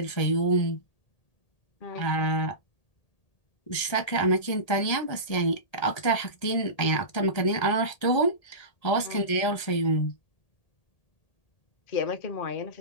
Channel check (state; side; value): late; right; 1.8 ms